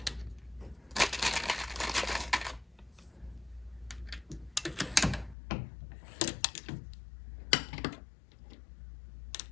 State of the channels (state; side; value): drops out; right; at 5.4 s